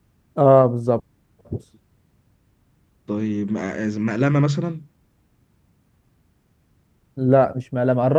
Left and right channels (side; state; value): both; identical; correlation 1.00